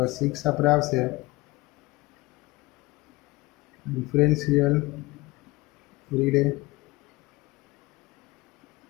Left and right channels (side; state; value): right; quieter; 21.6 dB